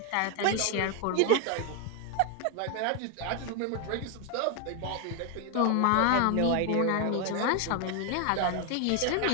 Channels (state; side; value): different; both; correlation 0.01